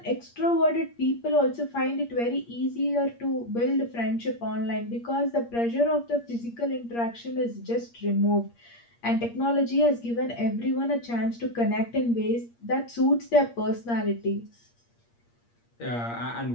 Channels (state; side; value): late; right; 8.6 ms